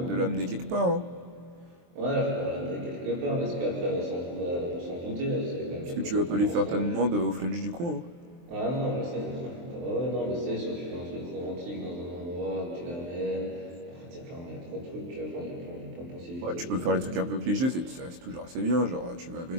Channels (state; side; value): late; left; 23 ms